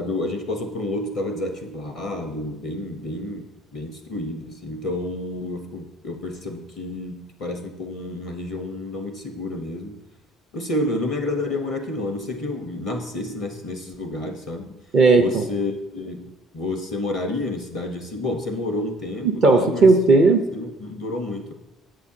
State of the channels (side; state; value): both; normal; correlation 0.55